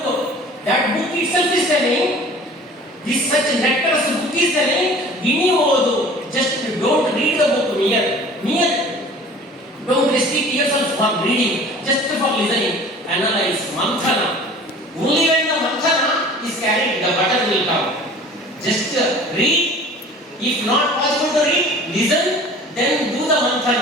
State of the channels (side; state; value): both; normal; correlation 0.45